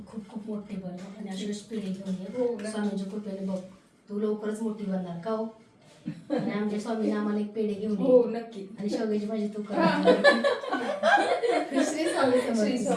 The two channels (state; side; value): identical; both; correlation 1.00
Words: खूप खूप मोठी बन आणि अशी पिढी घेऊन ये. स्वामींच्या कृपेने बघ तू लवकरच मोठी बनणार का हो. आणि आमच्या स्वामीने आम्हाला एक पेढे घेऊन हो नक्की. आणि शेवग्याची भाजी तू कर. श्री